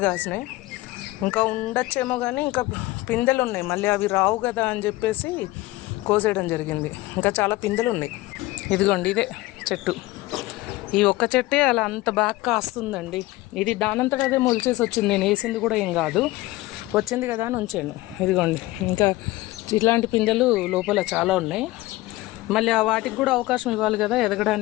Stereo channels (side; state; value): right; quieter; 18.9 dB